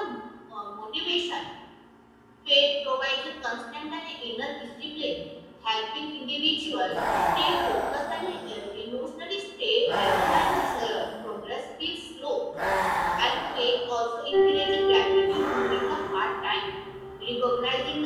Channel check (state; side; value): identical; both; correlation 1.00